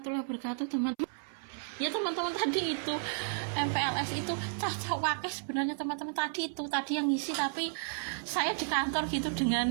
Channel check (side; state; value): left; silent; 56 dB below the other